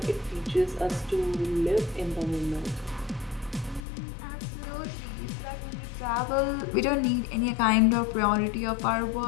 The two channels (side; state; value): right; drops out; at 3.8 s